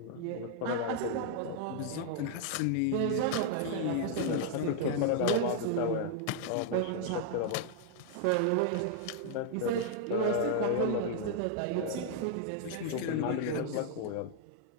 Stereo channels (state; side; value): different; both; correlation -0.01